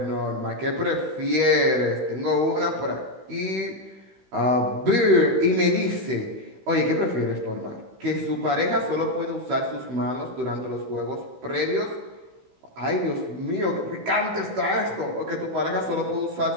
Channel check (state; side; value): late; left; 16 ms